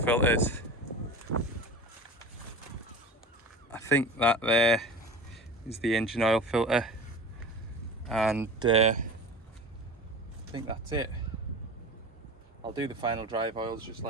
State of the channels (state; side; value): normal; both; correlation 0.33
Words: I think that there is the engine oil filter, and I think that's it. I'll do the final drive oils just